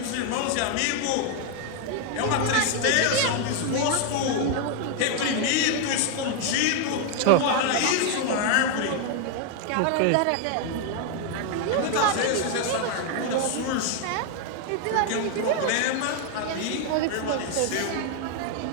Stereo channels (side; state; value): both; different; correlation 0.01